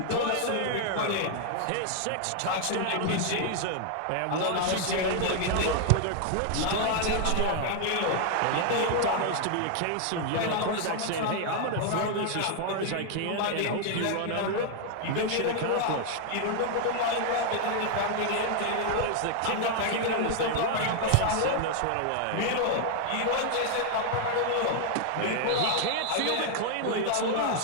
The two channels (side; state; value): both; different; correlation 0.00